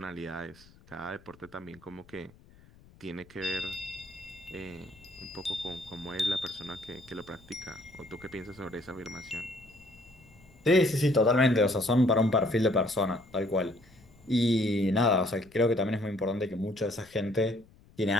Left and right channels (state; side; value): noise; left; rumble, 26 dB below the sound